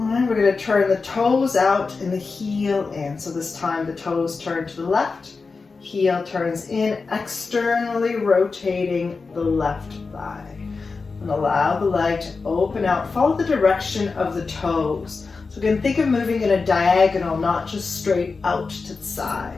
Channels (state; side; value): quieter; right; 4.4 dB